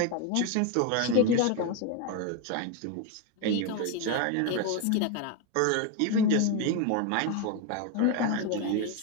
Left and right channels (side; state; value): both; different; correlation 0.02